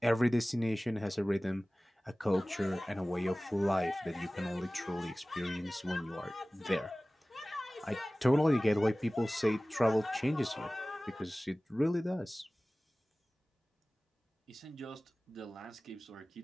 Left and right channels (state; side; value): normal; both; correlation 0.98